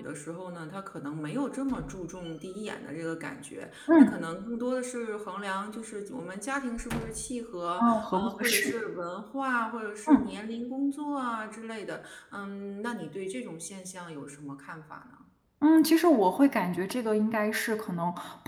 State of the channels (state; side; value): identical; both; correlation 1.00